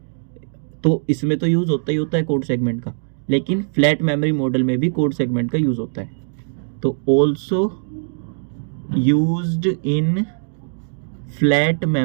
तो इसमें तो यूज़ होता ही होता है कोड सेगमेंट का, लेकिन फ्लैट मेमोरी मॉडल में भी कोड सेगमेंट का यूज़ होता है। तो also used in flat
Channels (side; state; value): left; silent; digital silence